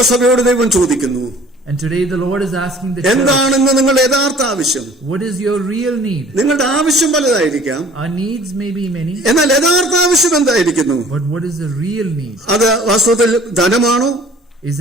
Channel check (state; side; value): normal; both; correlation 0.51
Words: ദൈവം ചോദിക്കുന്നു, and today the Lord is asking the church, എന്താണെന്ന് നിങ്ങളുടെ യഥാർത്ഥ ആവശ്യം? What is your real need? നിങ്ങളുടെ ആവശ്യം പലതായിരിക്കാം. Our needs may be many. എന്നാൽ യഥാർത്ഥ ആവശ്യം എന്തായിരിക്കുന്നു? But what is the real need? അത് വാസ്തവത്തിൽ ധനമാണോ? Is